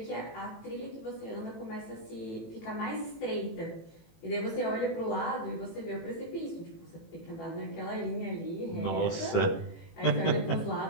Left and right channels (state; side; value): late; right; 18 ms